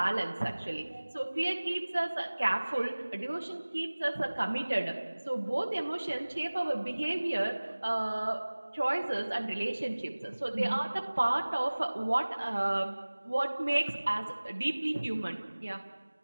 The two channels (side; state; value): both; inverted; correlation -1.00